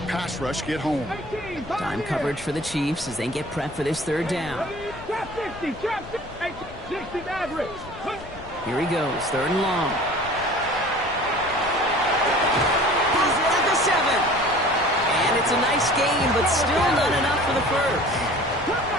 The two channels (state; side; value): noise; left; rumble, 17 dB below the sound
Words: pass rush get home. Time coverage for the Chiefs as they get prepped for this third down. Trap 60. Trap 60 Maverick. Here he goes, third and long. He's at the 7. And it's a nice gain, but still not enough for the first.